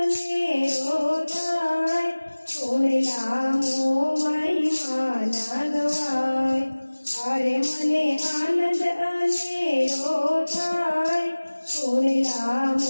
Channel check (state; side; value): inverted; both; correlation -1.00